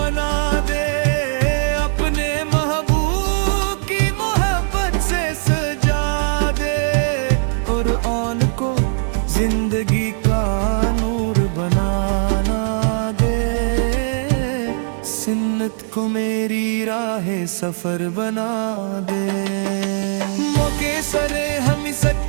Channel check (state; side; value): silent; left; 57 dB below the other